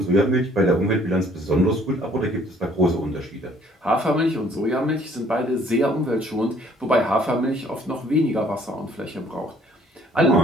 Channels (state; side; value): normal; both; correlation 0.59